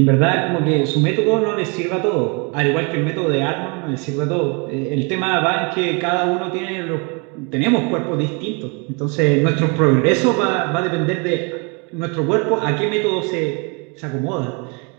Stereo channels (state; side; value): quieter; left; 32.6 dB